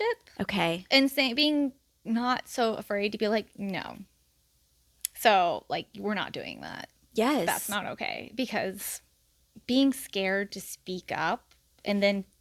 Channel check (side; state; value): both; identical; correlation 1.00